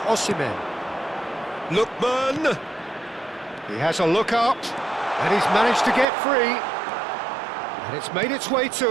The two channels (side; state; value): left; drops out; at 6.1 s